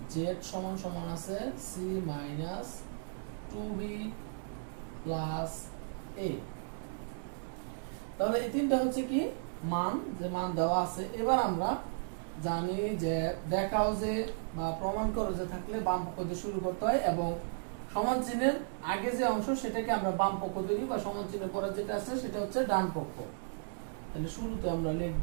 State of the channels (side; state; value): left; silent; digital silence